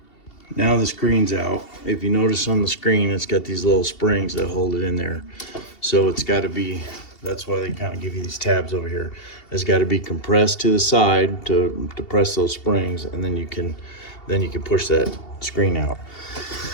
Now the screen's out. If you notice on the screen, it's got these little springs that hold it in there. So it's got to be, that's why they kind of give you these tabs over here. It's got to be compressed to the side to press those springs, and then you can push that screen out.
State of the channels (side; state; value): right; late; 2.7 ms